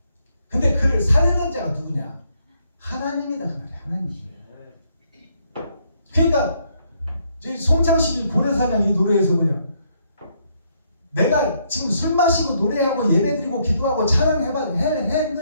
근데 그를 살리는 자가 누구냐? 하나님이다 그 말이야. 하나님. 그러니까 송창식이 고래사냥 이 노래에서 뭐냐? 내가 지금 술 마시고 노래하고 예배드리고 기도하고 찬양한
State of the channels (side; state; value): both; inverted; correlation -0.72